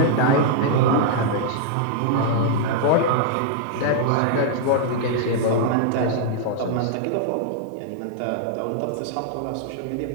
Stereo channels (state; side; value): different; both; correlation -0.01